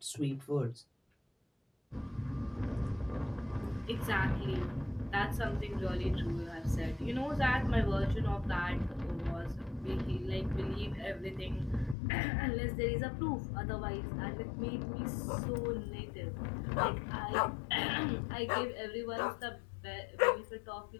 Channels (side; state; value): right; drops out; at 12.0 s